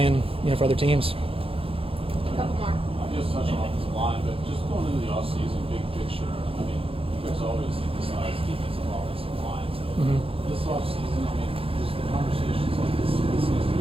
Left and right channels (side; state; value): left; late; 0.27 ms